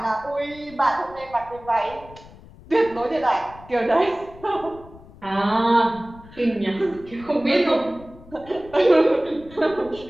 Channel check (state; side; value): noise; left; rumble, 21 dB below the sound